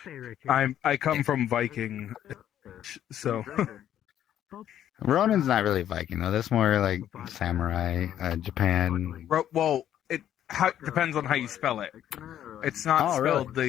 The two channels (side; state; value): right; quieter; 10.9 dB